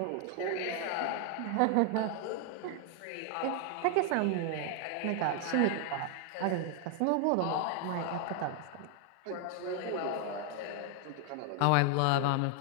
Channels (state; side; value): different; both; correlation 0.00